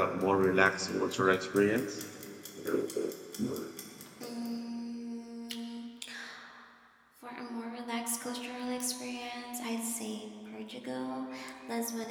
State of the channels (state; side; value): identical; both; correlation 1.00